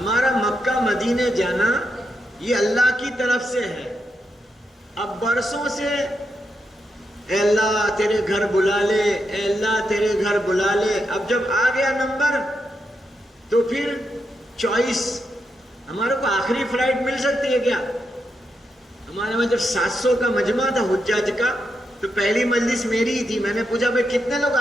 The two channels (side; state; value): both; normal; correlation 0.84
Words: مکہ مدینے جانا یہ اللہ کی طرف سے ہے. اب برسوں سے اے اللہ تیرے گھر بلا لے، اے اللہ تیرے گھر بلا لے. اب جب آ گیا نمبر تو پھر چوائس. ہمارے کو آخری فلائٹ مل سکتی ہے کیا؟ ہمارے میں جب 700 کا مجمع تھا حجاج کا تو پہلی مجلس میری ہی تھی. میں نے پوچھا بھائی کتنے لوگ